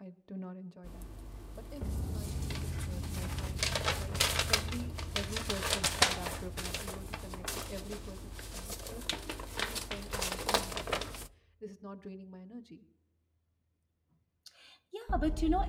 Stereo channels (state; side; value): identical; both; correlation 1.00